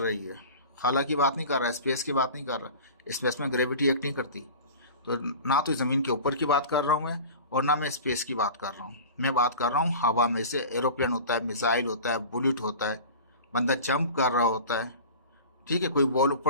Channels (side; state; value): both; inverted; correlation -0.37